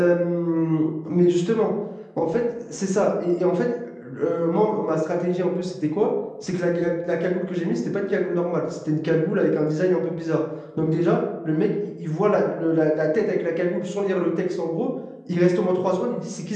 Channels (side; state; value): both; identical; correlation 1.00